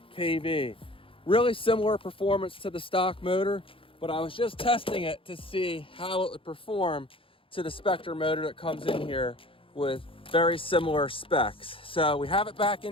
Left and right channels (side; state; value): right; late; 0.26 ms